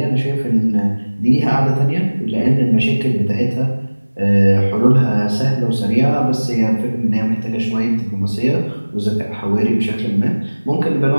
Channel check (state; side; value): inverted; both; correlation -1.00